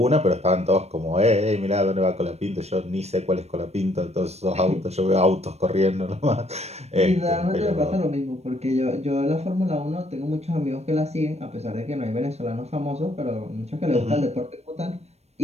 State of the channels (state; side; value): late; left; 0.31 ms